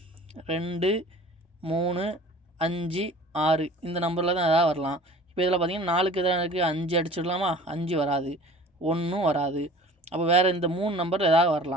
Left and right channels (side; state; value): both; normal; correlation 0.44